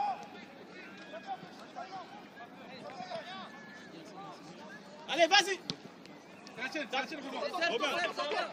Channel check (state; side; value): identical; both; correlation 1.00